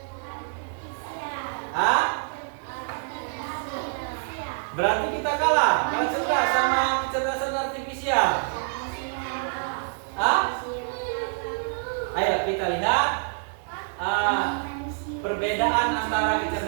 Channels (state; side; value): silent; left; digital silence